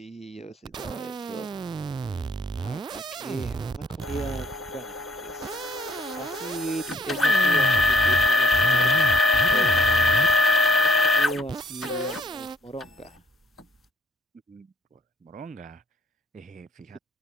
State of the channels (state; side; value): normal; both; correlation 0.64